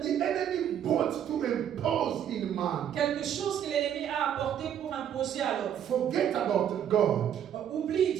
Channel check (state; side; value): quieter; left; 9.6 dB